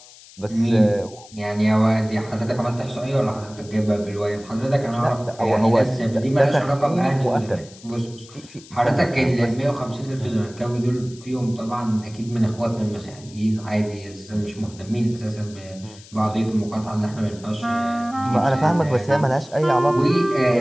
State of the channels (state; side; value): noise; left; hiss, 21 dB below the sound